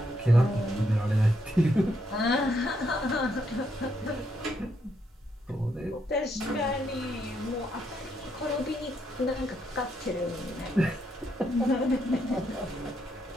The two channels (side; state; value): both; normal; correlation 0.77